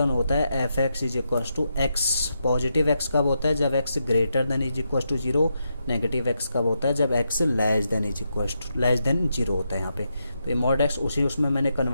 होता है f x is equal to x, positive x कब होता है, जब x greater than is equal to 0, negative x कब होता है, जब x less than is equal to less than 0 होता है यहाँ पे। तो ये मॉड एक्स उसमें मैंने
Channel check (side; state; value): both; inverted; correlation -0.83